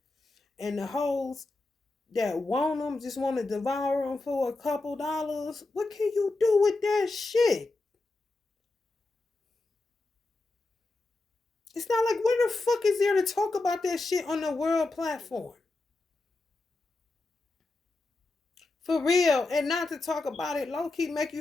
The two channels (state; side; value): quieter; right; 3.2 dB